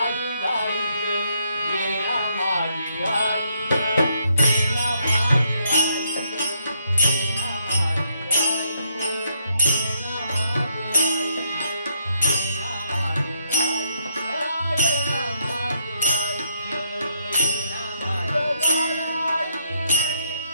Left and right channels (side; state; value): both; inverted; correlation -0.76